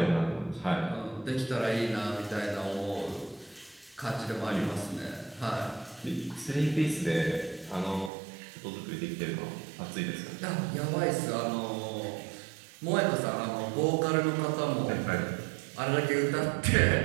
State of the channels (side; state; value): left; drops out; at 8.1 s